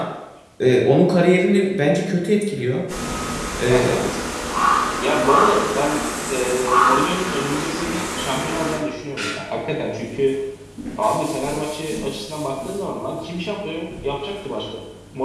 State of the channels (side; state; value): both; identical; correlation 1.00